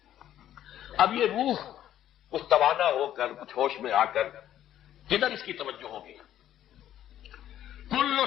اب یہ روح کچھ توانا ہو کر، کچھ ہوش میں آ کر کدھر اس کی توجہ ہوگی؟ کل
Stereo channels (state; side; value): quieter; right; 11.7 dB